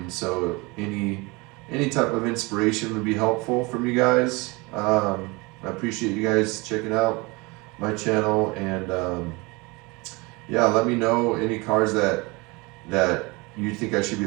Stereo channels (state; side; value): quieter; left; 25.8 dB